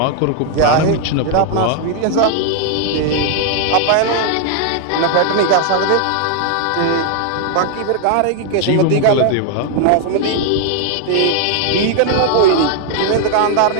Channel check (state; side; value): different; both; correlation 0.00